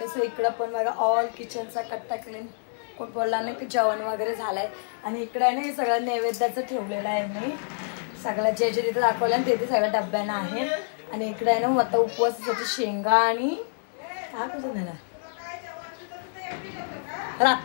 सो इकडं पण बघा ऑल किचनचा कट्टा क्लीन, कोण बोलला नाही की जेवण वगैरे झालंय. आणि इकडे आहे ना हे सगळं नैवेद्याचं ठेवलेलं आहे मी. सगळ्या जे जे तिथे दाखवलं ना ते सगळ्या डब्यानं आहे. आणि इकडे आहे ना आता उपवासासाठी शेंगा आणि काय बोलतो त्याला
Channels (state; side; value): silent; right; digital silence